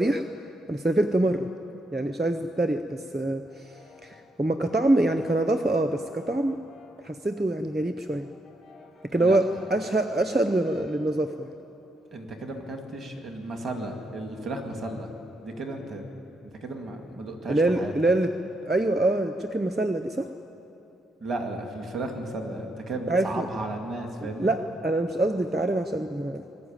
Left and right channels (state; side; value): normal; both; correlation 0.79